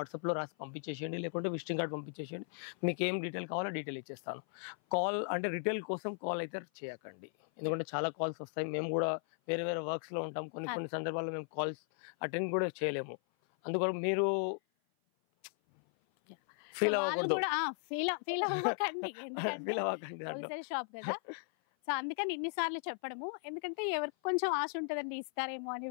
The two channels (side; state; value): right; silent; 53 dB below the other